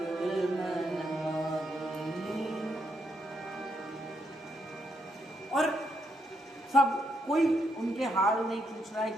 मन माही। और सब कोई उनके हाल नहीं पूछ रहा है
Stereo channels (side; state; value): both; normal; correlation 0.78